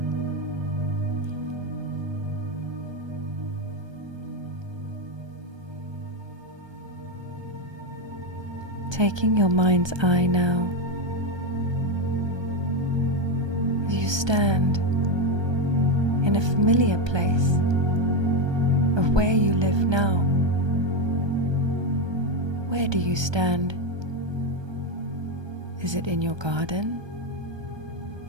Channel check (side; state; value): left; late; 1.3 ms